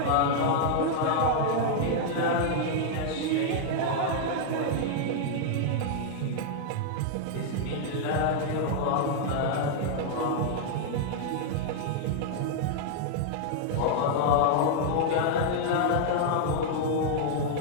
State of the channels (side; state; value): both; different; correlation -0.01